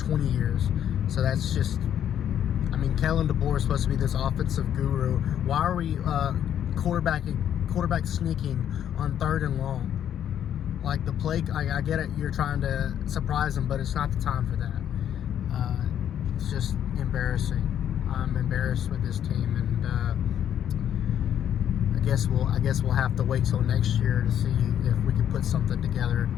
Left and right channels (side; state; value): right; quieter; 9.9 dB